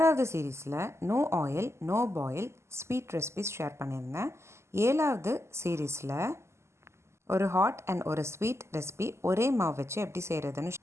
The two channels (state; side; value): late; left; 0.13 ms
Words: சீரீஸில் no oil no boil sweet recipes share பண்ணியிருந்தேன். 7வது சீரீஸில் ஒரு ஹாட் அண்ட் ஒரு ஸ்வீட் ரெசிபி ஒரே மாவு வச்சு எப்படி செய்கிறதுன்னு